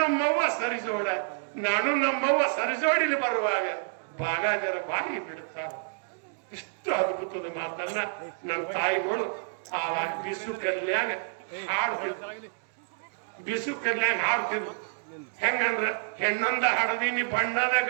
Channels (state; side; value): silent; left; digital silence